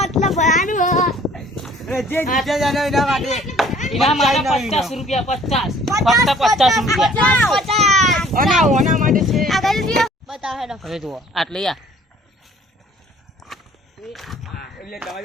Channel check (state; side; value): normal; both; correlation 0.56